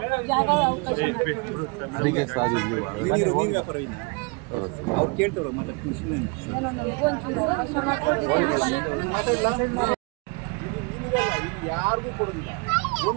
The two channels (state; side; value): quieter; left; 31.1 dB